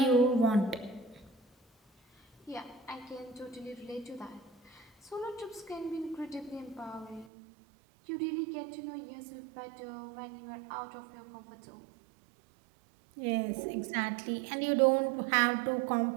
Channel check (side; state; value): left; drops out; at 7.2 s